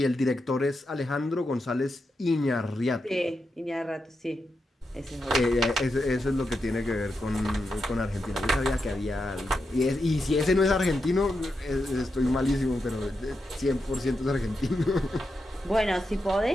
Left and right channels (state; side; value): normal; both; correlation 0.87